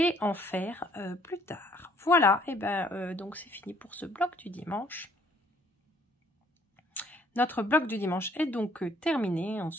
en faire plus tard. Voilà, et ben donc c'est fini pour ce bloc du dimanche. Notre bloc du dimanche est donc terminé. On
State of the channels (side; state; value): both; normal; correlation 0.62